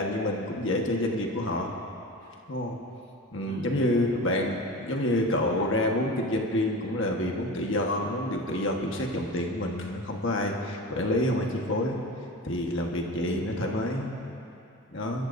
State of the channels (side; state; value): both; normal; correlation 0.32